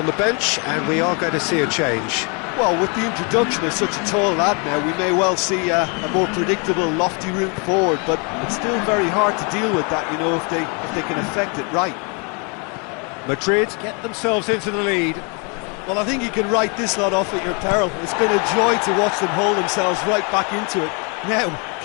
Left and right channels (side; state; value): right; quieter; 34.2 dB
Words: the bench, and we are going to see a change. Well, with the introduction of such a tall lad now, we may well see a more predictable, lofty route forward, but it's still very hard to deal with that, you know, if they can affect it right. Madrid get themselves into the lead. Well, I think you can write this lot off at your peril. It's been a joy to watch them hold themselves right back into it. Now,